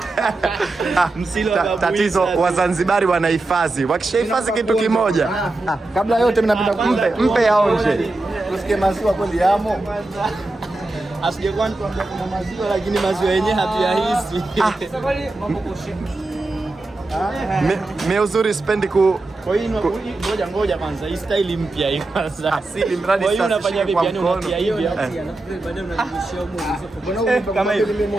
Msile wa Babu Isa. Tatizo Wazanzibari wanahifadhi. Wakishahifadhi kitu kimoja, kabla yote mimi napenda mpe yaonje. Usikie maziwa kweli yamo. Asijekuwa nikwambia kuna maziwa, lakini maziwa yenyewe hatuyahisi. Mimi uzuri sipendi kwa hiyo ngoja kwanza, hii style mpya hii kwanza. Asili mradi sasa. Kwa hiyo unafanya vipi? Yani unatia hivi baadaye unarudishia huko. Kama hivi mimi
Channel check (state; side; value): quieter; left; 3.0 dB